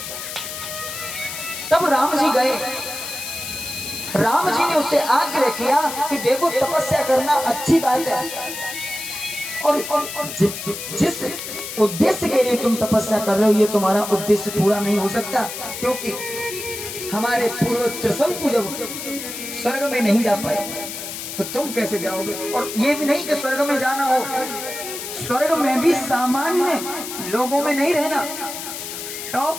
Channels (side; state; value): left; noise; hiss, 8 dB below the sound